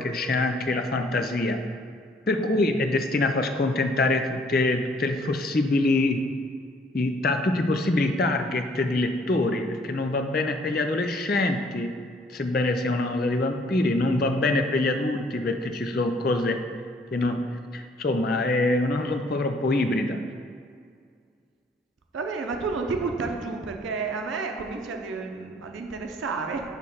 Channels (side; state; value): both; normal; correlation 0.61